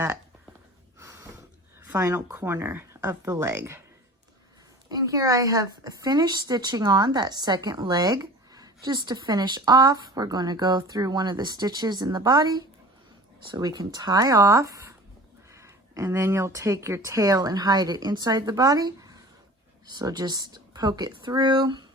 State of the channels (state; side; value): normal; both; correlation 0.41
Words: final corner of the leg. And here I have finished stitching on that second leg. Just to finish off, we're going to go through one of the stitches in the body so we can tie off. And then you'll take your tail and hide it inside the body. So just poke it through,